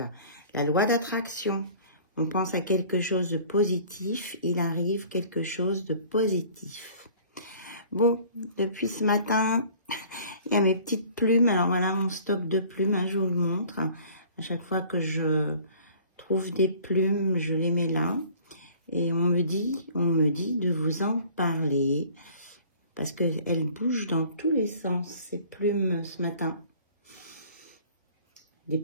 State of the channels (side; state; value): both; inverted; correlation -0.51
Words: La loi d'attraction. On pense à quelque chose de positif, il arrive quelque chose de positif. Bon, depuis ce matin, il y a mes petites plumes. Alors voilà mon stock de plumes, hein, je vous le montre. À chaque fois que je trouve des plumes, je les mets là. Et on me dit de vous en parler. Parce qu'elles bougent dans tous les sens, ces plumes ce matin. Des